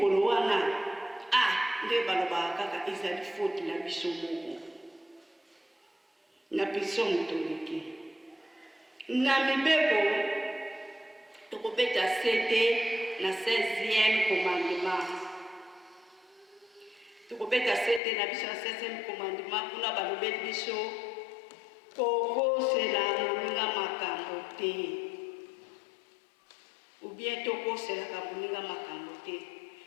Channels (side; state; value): right; drops out; at 18.0 s